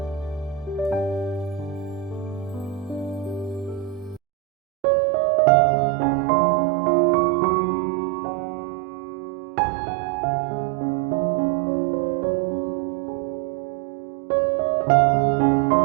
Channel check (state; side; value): drops out; left; at 4.2 s